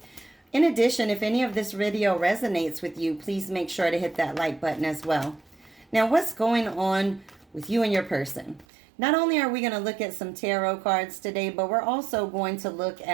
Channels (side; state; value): left; drops out; at 8.7 s